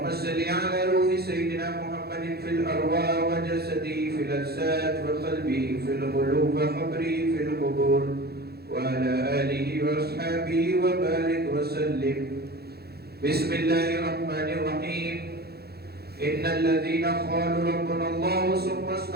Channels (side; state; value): left; late; 0.46 ms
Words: صل على روح سيدنا محمد في الأرواح وجسده في الأجساد وقلبه في القلوب وقبره في القبور وعلى آله وأصحابه وبارك وسلم. بسم الله الرحمن الرحيم. إن الذين قالوا ربنا الله ثم